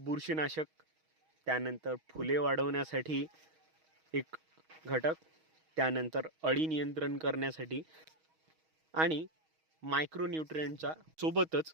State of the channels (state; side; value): late; left; 6.3 ms